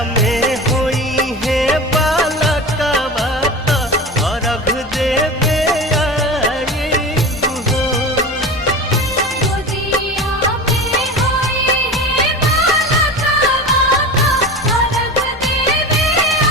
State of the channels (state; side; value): normal; both; correlation 0.30